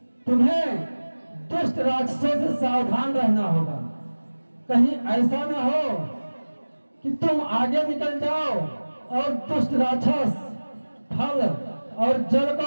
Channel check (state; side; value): inverted; both; correlation -1.00